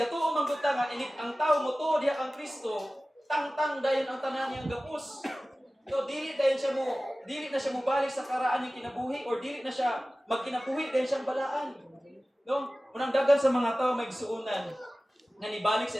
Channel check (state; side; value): normal; both; correlation 0.97